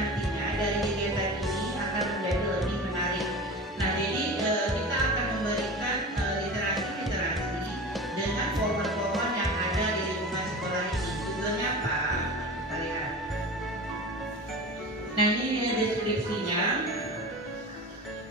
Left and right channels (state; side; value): normal; both; correlation 0.32